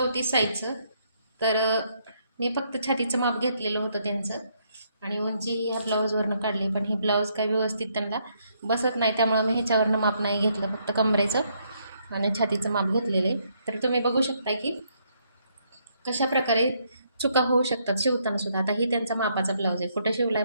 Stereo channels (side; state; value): both; inverted; correlation -0.73